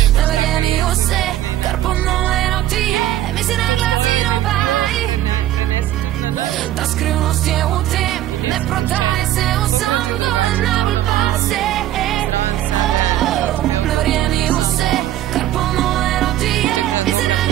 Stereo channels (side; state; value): left; quieter; 13.4 dB